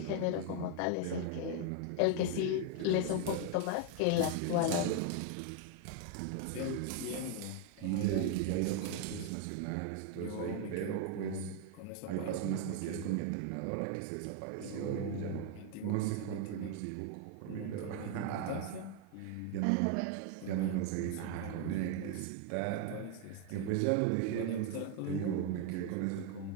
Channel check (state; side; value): different; both; correlation 0.01